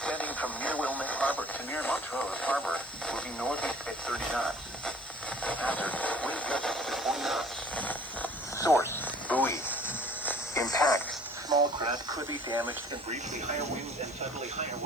from near Wilmette Harbor to near Montrose Harbor, moving northeast at 30 knots. Hazard, wind gusts to 40 knots. Source, buoy. Impact, small craft could be damaged and briefly higher winds and suddenly higher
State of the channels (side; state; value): left; noise; hiss, 23 dB below the sound